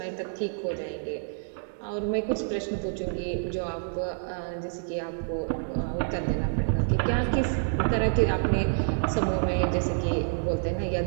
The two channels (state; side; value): silent; left; 59 dB below the other